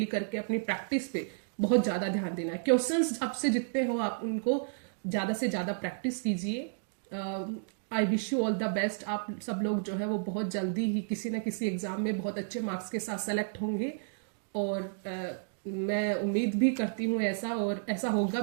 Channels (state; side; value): silent; left; digital silence